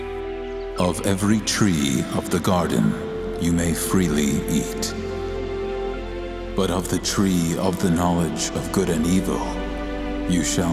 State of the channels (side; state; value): both; identical; correlation 1.00